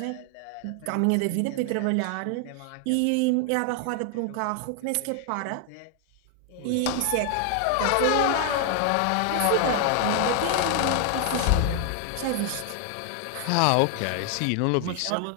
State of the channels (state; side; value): different; both; correlation 0.00